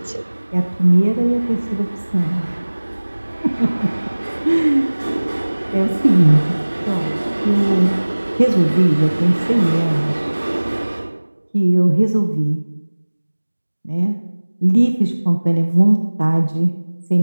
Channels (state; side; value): inverted; both; correlation -1.00